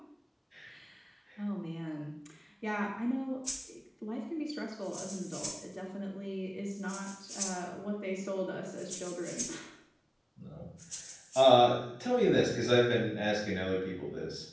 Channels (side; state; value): both; identical; correlation 1.00